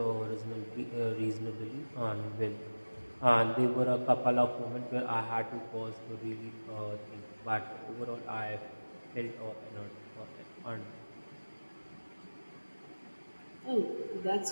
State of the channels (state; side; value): inverted; both; correlation -1.00